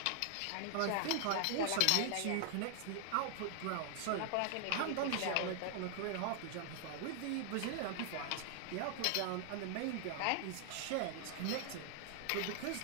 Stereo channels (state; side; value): different; both; correlation 0.00